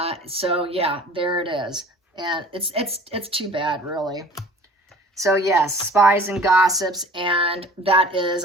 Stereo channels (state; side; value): normal; both; correlation 0.47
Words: So yeah, there it is. And it's too bad, really. So yes, spies and gossips, and that is